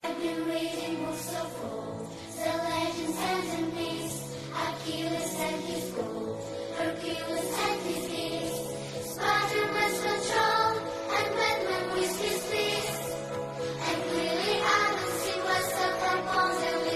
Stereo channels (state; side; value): identical; both; correlation 1.00